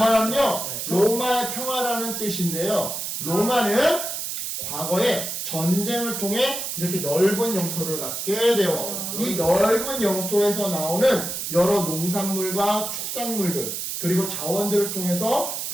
로마의 평화라는 뜻인데요. 로마는 과거에 전쟁을 통해 이렇게 넓은 영토를 갖게 되었어요. 이 넓은 영토에서 나오는 여러 농산물과 축산물들, 그리고 자원들을 통해서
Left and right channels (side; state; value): right; noise; hiss, 4 dB below the sound